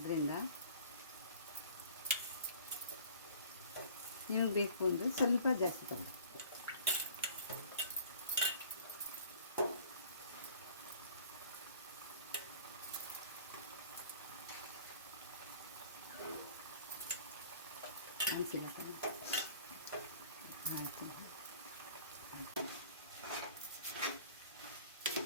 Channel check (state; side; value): inverted; both; correlation -0.50